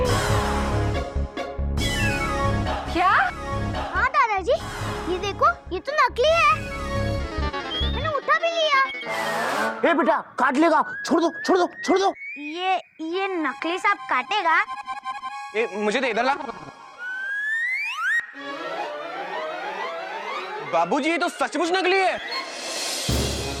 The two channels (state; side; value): identical; both; correlation 1.00